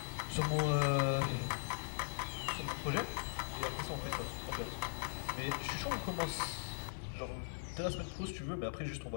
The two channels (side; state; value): right; silent; 51 dB below the other